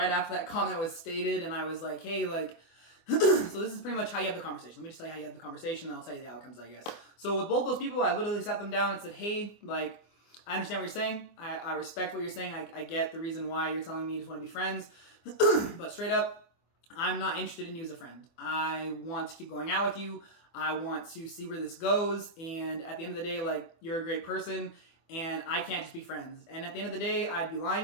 after that comment was stated and I was like, hey, like, so this is pretty much how you have the conversation. Let me just tell you how you have the conversation and I'll tell you the outcomes, I guess. So with both those people, I literally sat them down and said, hey, like, I understand what you're saying. I respect what you're saying. I get the reason why you're telling me you just want to be friends. But straight up, I'm not interested in you as a friend. I want to keep going out with you. I want to see where this goes. And at the end of the day, like, you're a great person and I can't just be friends. And at the end of the day, I'd be lying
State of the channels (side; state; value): right; late; 24 ms